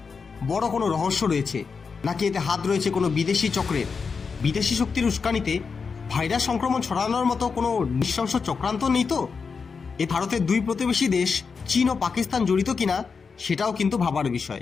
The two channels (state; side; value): quieter; right; 5.3 dB